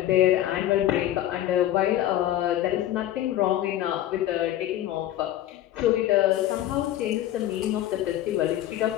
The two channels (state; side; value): quieter; right; 13.1 dB